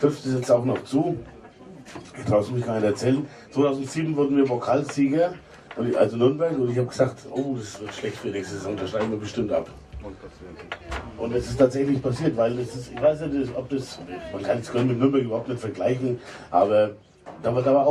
es jetzt auch noch zu. Ich traue es mich gar nicht erzählen. 2007 wurden wir Pokalsieger, also Nürnberg, und ich habe gesagt, oh, das wird schlecht für nächste Saison, da steigen wir bestimmt ab. Und es ist tatsächlich passiert, weil das ist, ich weiß nicht, ob das, man kann es mit Nürnberg überhaupt nicht vergleichen, aber da war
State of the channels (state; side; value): identical; both; correlation 1.00